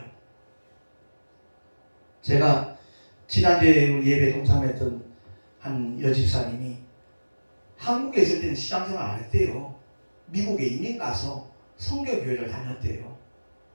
제가 지난주에 예배 동참했던 한 여집사님이 한국에 있을 때는 시장생활 안 했대요. 미국에 이민 가서 선교교회를 다녔대요.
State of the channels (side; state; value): both; inverted; correlation -1.00